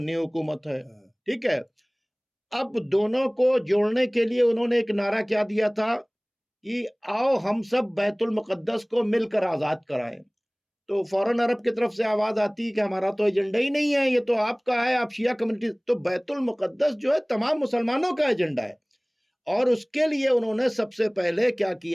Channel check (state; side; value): identical; both; correlation 1.00